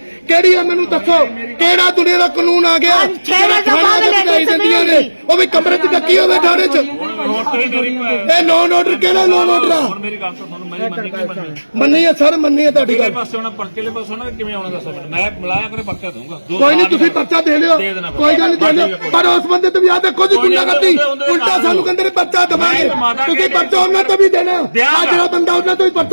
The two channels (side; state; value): both; inverted; correlation -1.00